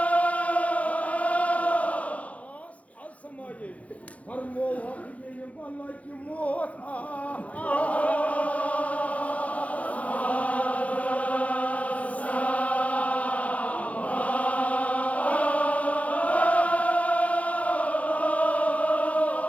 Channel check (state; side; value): late; right; 0.067 ms